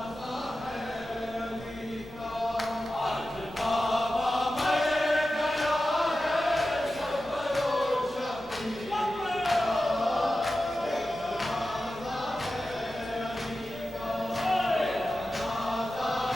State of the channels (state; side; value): noise; right; hum, 20 dB below the sound